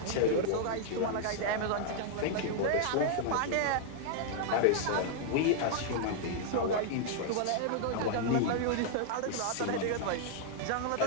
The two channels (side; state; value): both; different; correlation -0.01